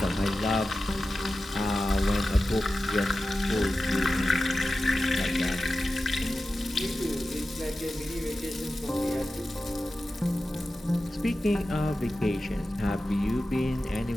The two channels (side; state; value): both; normal; correlation 0.93